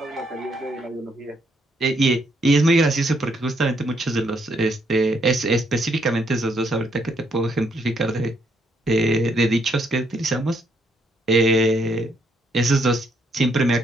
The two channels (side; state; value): both; normal; correlation 0.73